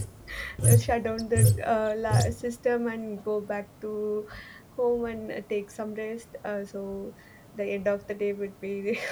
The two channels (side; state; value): both; identical; correlation 1.00